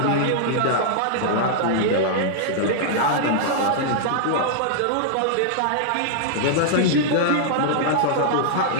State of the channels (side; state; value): both; different; correlation -0.02